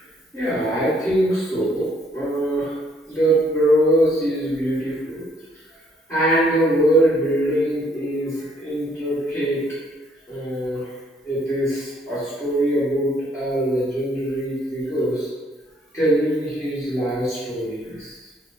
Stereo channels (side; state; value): both; normal; correlation 0.66